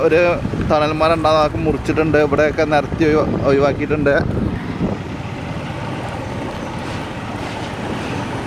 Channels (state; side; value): identical; both; correlation 1.00